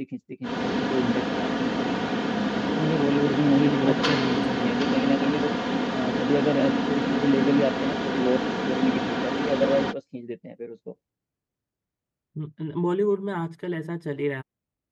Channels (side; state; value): both; identical; correlation 1.00